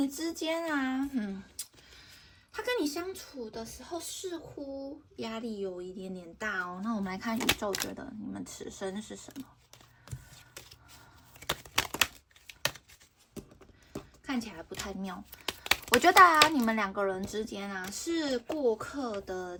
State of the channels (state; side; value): identical; both; correlation 1.00